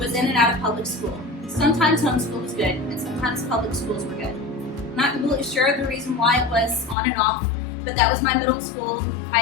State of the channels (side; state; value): right; drops out; at 7.0 s